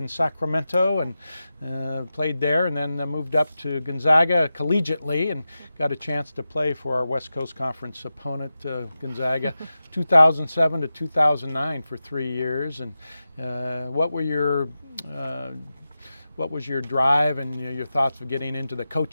Sacramento, and played there, and then moved up to Gonzaga collegiately and got a chance to play for our West Coast Conference opponent, Gonzaga, 2007 to 2009 for 3 years. And what was your drive and your thoughts of getting into the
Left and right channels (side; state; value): both; inverted; correlation -0.92